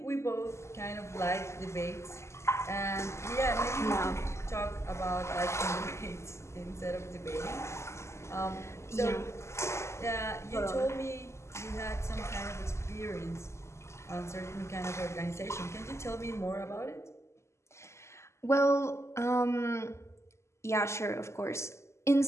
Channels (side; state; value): right; late; 0.13 ms